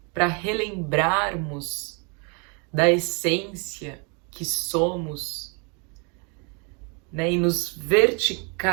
para relembrarmos da essência que somos, e nos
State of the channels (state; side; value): quieter; left; 34.4 dB